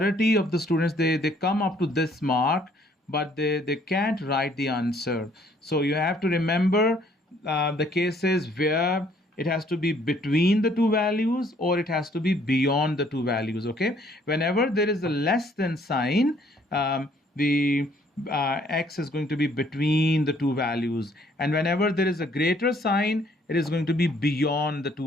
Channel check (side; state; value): both; normal; correlation 0.63